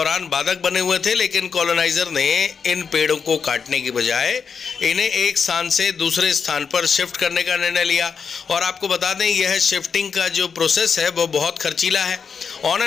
बाधक बने हुए थे, लेकिन कॉलोनाइजर ने इन पेड़ों को काटने की बजाय इन्हें एक स्थान से दूसरे स्थान पर शिफ्ट करने का निर्णय लिया। और आपको बता दें, यह शिफ्टिंग का जो प्रोसेस है वो बहुत खर्चीला है। ऑन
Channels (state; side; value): quieter; right; 6.1 dB